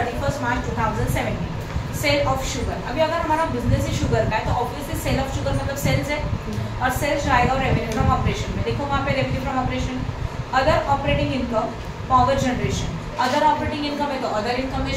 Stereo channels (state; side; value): identical; both; correlation 1.00